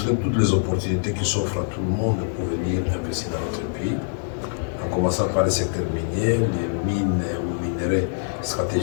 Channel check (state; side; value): silent; right; digital silence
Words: toutes les opportunités qui s'offrent à tout le monde pour venir investir dans notre pays, en commençant par le secteur minier, les mines ou minerais